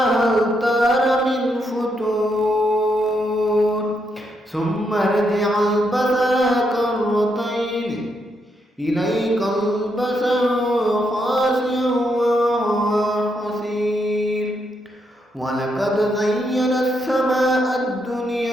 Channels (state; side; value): normal; both; correlation 0.79